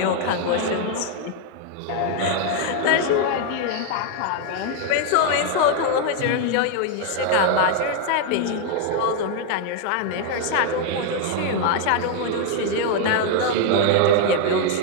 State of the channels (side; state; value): both; different; correlation 0.00